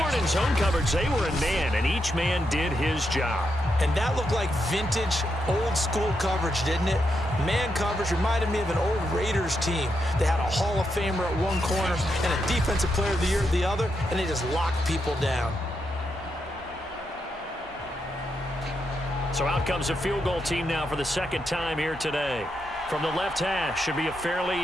weren't in zone coverage. They were in man, and each man did his job. And that looked like vintage, old-school coverage, didn't it? Man coverage reminded me of an old Raiders team. They had a Hall of Famer at one corner and a Defensive Player of the Year at the other, and they just locked people down. So out comes a field goal team now for the 2nd time here today. From the left hash, should be a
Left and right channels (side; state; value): both; normal; correlation 0.83